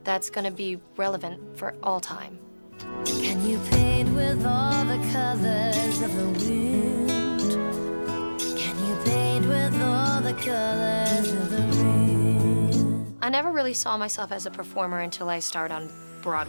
that's gonna be relevant for all time. can you paint with all the colors of the wind? Can you paint with all the colors of the rain? I never really saw myself as a performer until I started on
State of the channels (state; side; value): inverted; both; correlation -1.00